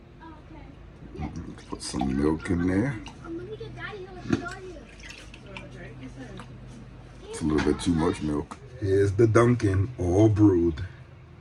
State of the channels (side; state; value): both; identical; correlation 1.00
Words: Put some milk in there. It's a little bit too much milk. Here's the Dunkin' all brewed.